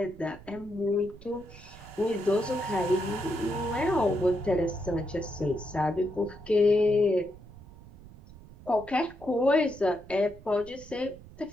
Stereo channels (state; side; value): noise; right; rumble, 19 dB below the sound